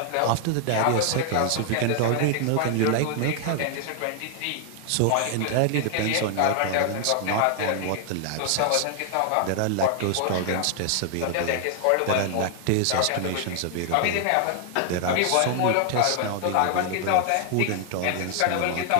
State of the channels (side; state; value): both; different; correlation 0.00